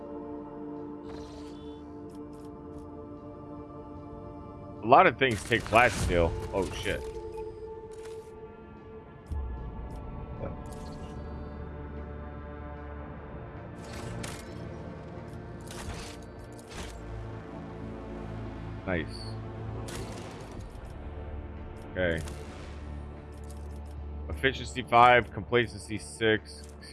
A lot of things take flat steel. Oh shit. Nice. Okay. Efficiency 5, complacency 6,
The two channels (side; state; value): both; identical; correlation 1.00